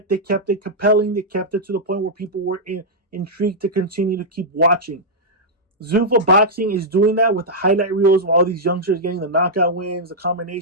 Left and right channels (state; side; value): normal; both; correlation -0.08